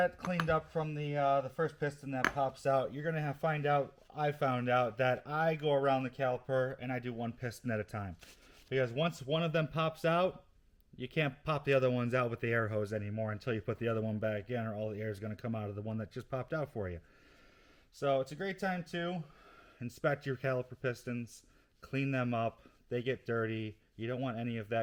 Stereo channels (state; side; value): identical; both; correlation 1.00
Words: cleaned up from the first piston that pops out, you're going to I found out that I go around the caliper and I do one piston at a time. Because once one of them pops out, you can't pop the other ones out with the air hose anymore until you put the other one back in, or all the air is going to come out of the one that just popped out for you. So it's a great time to inspect your caliper pistons, clean them up. They get dirty. You don't want any of